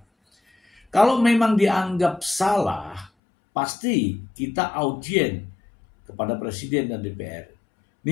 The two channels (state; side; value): drops out; right; at 3.1 s